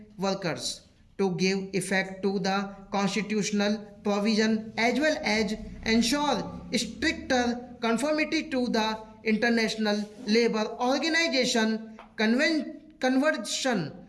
workers to give effect to the constitutional provision as well as ensure stricter conformity to the International Labour Organization Convention.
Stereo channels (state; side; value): identical; both; correlation 1.00